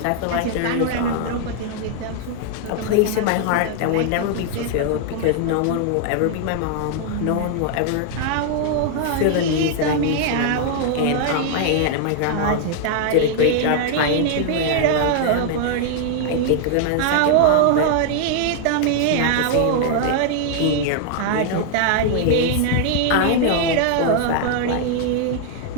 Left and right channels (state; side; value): different; both; correlation 0.00